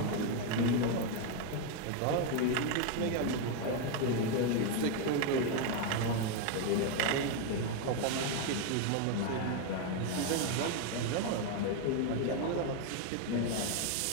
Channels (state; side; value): different; both; correlation 0.01